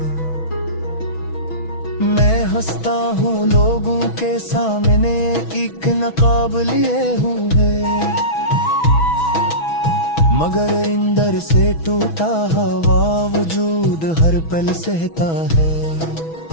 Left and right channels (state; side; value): late; right; 6.1 ms